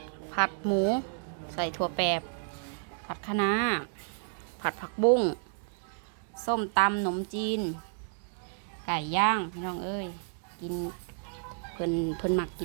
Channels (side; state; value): left; silent; 57 dB below the other